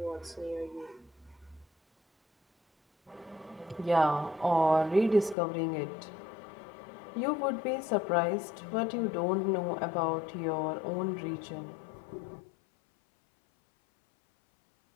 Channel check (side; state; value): right; drops out; at 5.4 s